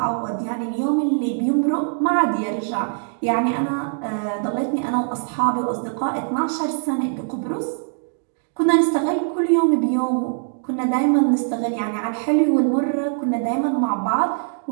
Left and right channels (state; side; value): silent; left; digital silence